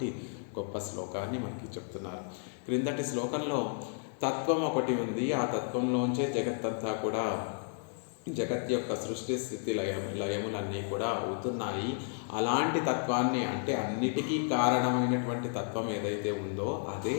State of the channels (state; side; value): silent; right; 56 dB below the other